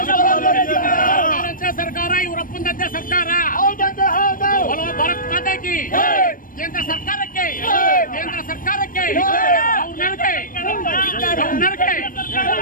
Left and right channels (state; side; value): late; right; 0.40 ms